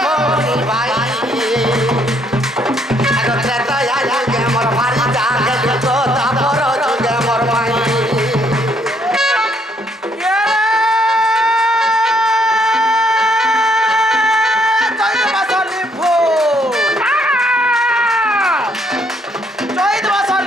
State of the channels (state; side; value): normal; both; correlation 0.69